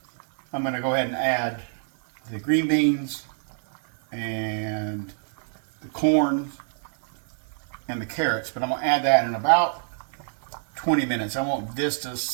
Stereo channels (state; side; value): silent; left; digital silence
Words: I'm going to go ahead and add the green beans and the corn and the carrots, but I'm going to add that in about 20 minutes. I want this to